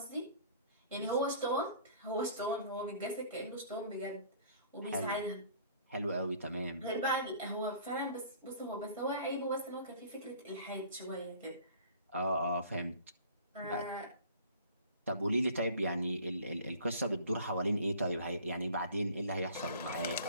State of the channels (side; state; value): both; inverted; correlation -0.49